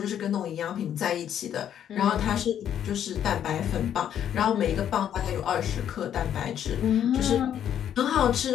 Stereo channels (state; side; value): quieter; right; 9.8 dB